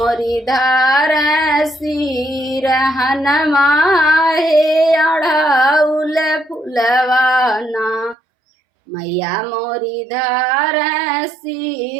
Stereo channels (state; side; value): drops out; left; at 8.2 s